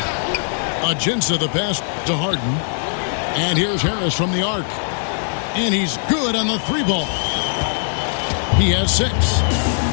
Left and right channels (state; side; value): silent; right; digital silence